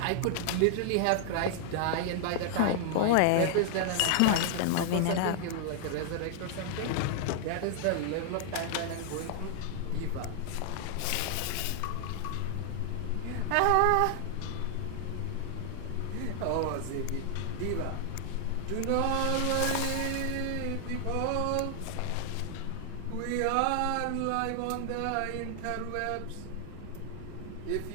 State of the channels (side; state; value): both; different; correlation 0.00